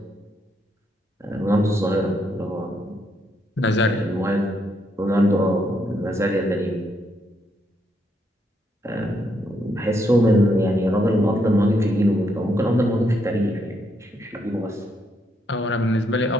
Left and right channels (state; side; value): normal; both; correlation 0.76